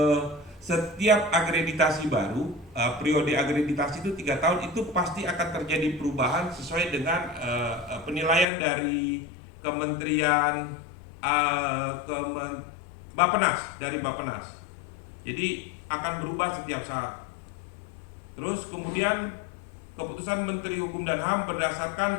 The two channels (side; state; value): right; drops out; at 8.5 s